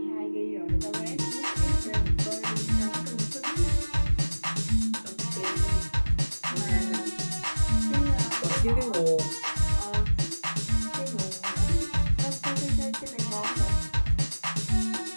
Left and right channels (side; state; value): both; inverted; correlation -1.00